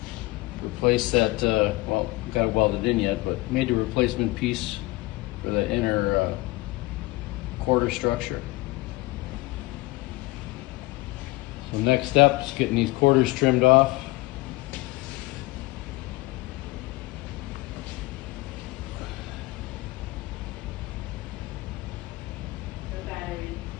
Replaced that, well, got it welded in yet, but made the replacement piece for the inner quarter structure. So next step is getting these quarters trimmed off.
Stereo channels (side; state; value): right; quieter; 21.1 dB